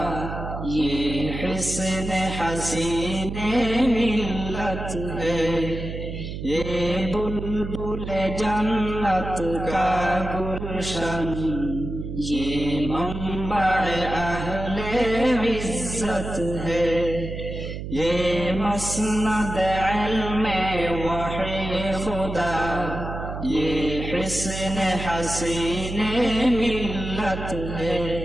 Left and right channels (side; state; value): right; noise; hum, 7 dB below the sound